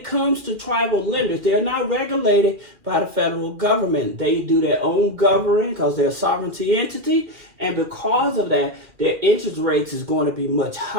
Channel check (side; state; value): left; late; 2.4 ms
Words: comes to tribal lenders, they're not regulated by the federal government. They do their own governing because they're a sovereignty entity. And because of that, their interest rates is going to be much